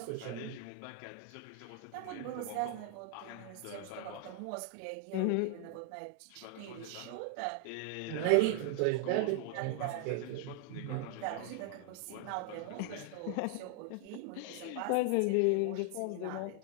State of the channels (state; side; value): different; both; correlation 0.00